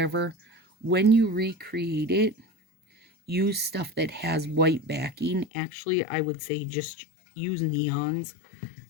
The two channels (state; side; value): drops out; right; at 5.5 s